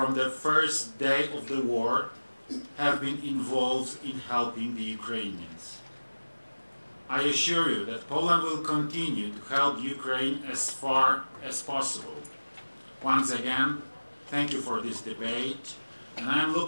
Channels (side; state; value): both; inverted; correlation -1.00